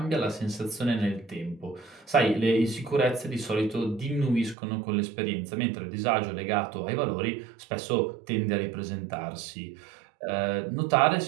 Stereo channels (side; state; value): left; drops out; at 4.5 s